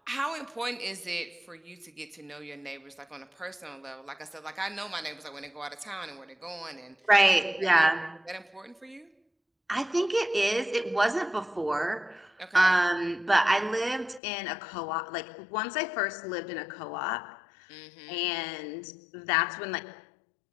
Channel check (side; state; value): right; drops out; at 14.2 s